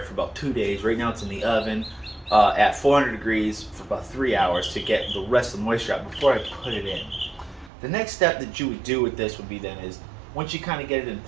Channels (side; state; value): left; drops out; at 7.7 s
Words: for about 2 days. Right now it's in the oven at 400 degrees for about 3 hours to get the rest of the moisture out before I put it in. The next step that you would do with this would be then is, once you kind of get it in